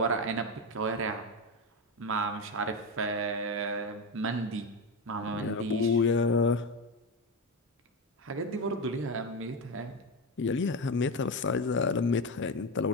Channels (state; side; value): normal; both; correlation 0.14